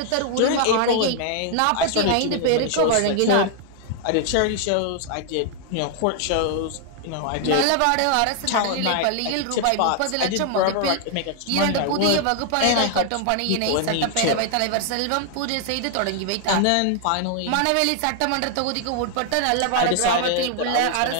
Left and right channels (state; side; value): different; both; correlation 0.00